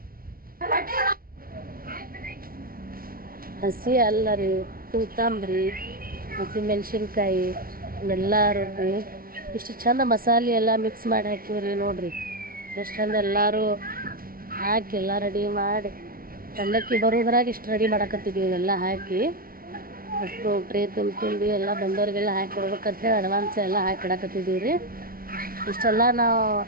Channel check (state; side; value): late; left; 0.42 ms